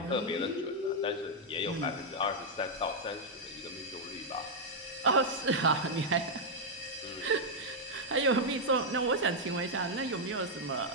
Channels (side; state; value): both; normal; correlation -0.03